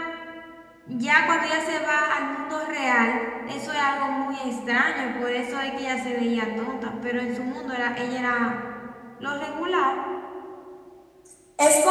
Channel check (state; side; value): identical; both; correlation 1.00